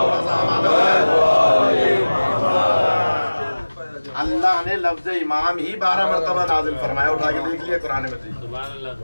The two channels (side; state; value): both; inverted; correlation -1.00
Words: अल्लाह ने लफ्ज़ इमाम ही 12 मरतबा नाजिल फरमाया। उठा के देख लिया कुरान मजीद।